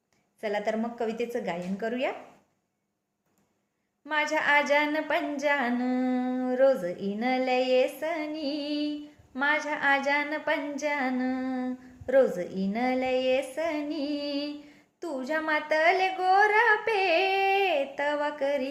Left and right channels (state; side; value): identical; both; correlation 1.00